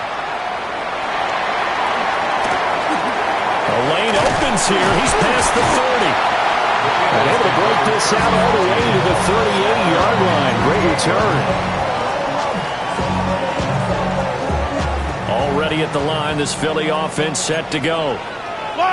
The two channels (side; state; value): both; identical; correlation 1.00